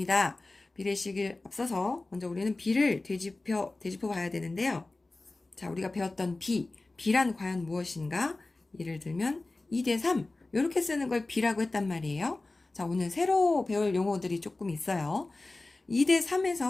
비례식을 앞서서 먼저 우리는 비를 되짚어 봐야 되는데요. 자, 우리가 배웠던 비란 과연 무엇인가? 예를 들면 2대 3 이렇게 쓰는 걸 비라고 했단 말이에요. 자, 오늘 새로 배울 용어들이 조금 있어요. 2대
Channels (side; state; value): right; quieter; 3.1 dB